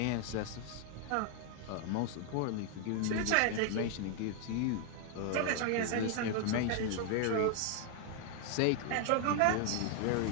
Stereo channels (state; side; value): different; both; correlation 0.00